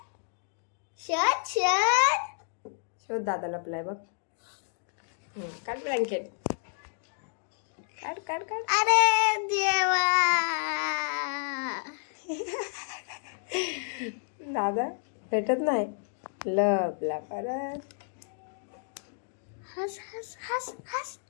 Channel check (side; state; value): right; silent; digital silence